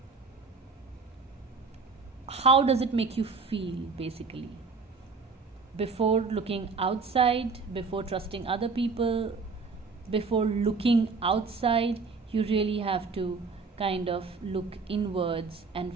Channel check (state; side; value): quieter; left; 4.5 dB